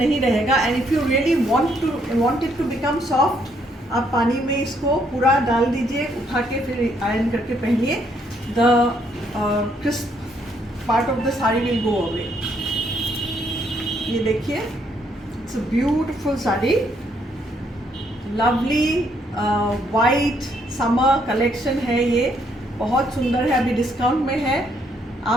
रहेगा and if you really want it to become soft, आप पानी में इसको पूरा डाल दीजिए, उठा के फिर iron करके पहनिए. The crisp part of the saree will go away. ये देखिए, it's a beautiful saree, lovely white summer collection है. ये बहुत सुंदर है. अभी डिस्काउंट में है.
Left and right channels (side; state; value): both; normal; correlation 0.71